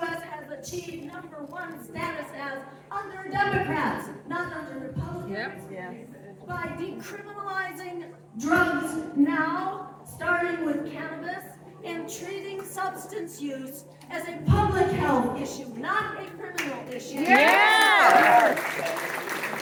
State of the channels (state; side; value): identical; both; correlation 1.00